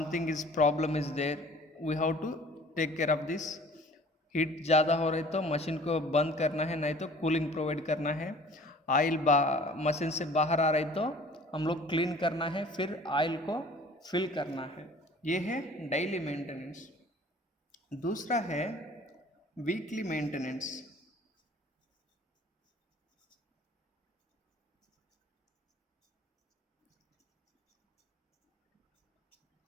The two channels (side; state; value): both; normal; correlation 0.49